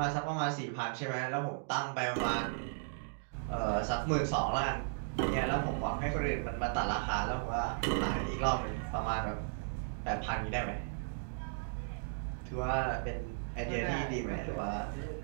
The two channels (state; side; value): silent; left; digital silence